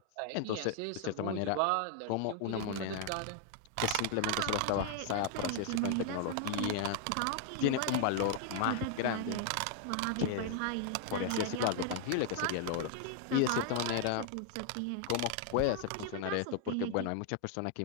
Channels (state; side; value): different; both; correlation 0.00